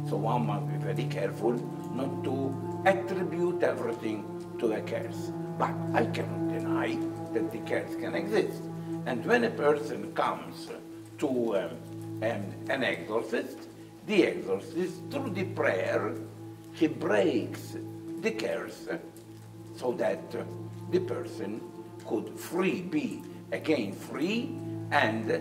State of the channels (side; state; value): both; identical; correlation 1.00